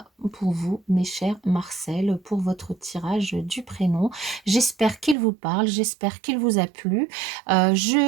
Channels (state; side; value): drops out; left; at 5.2 s